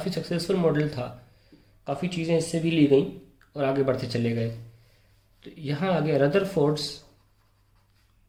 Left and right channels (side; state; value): both; identical; correlation 1.00